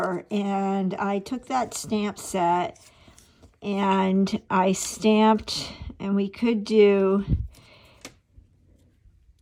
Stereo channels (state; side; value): identical; both; correlation 1.00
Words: and I took that stamp set and I stamped, and we could do